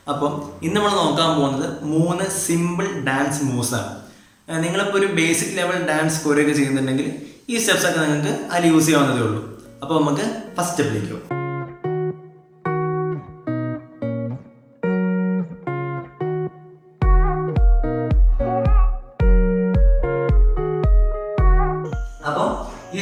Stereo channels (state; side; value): identical; both; correlation 1.00